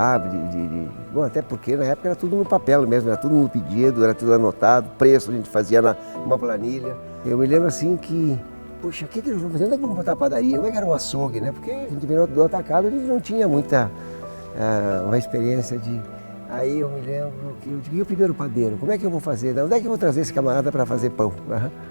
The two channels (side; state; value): both; inverted; correlation -1.00